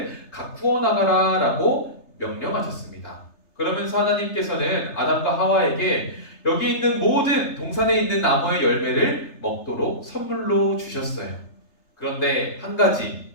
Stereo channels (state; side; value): late; right; 3.3 ms